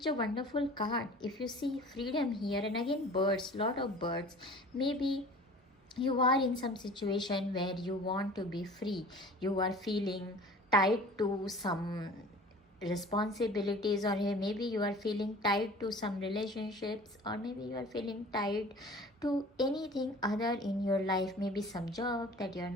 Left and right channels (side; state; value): both; normal; correlation 0.44